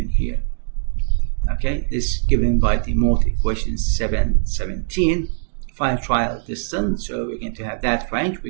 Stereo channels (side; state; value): left; silent; digital silence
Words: here. Okay, this is given by the mode equation 717. Find trial distance, so we're going to have that range.